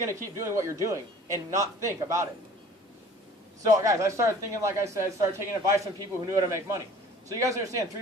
to keep doing what you're doing and not think about it. So, guys, I started thinking, like I said, started taking advice from people who knew how to make money. So you guys understand,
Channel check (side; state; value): both; normal; correlation 0.48